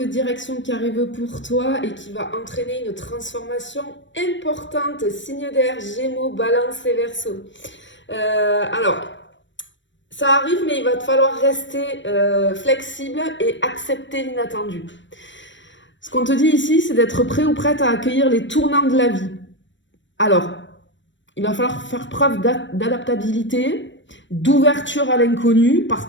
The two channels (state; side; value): late; right; 0.54 ms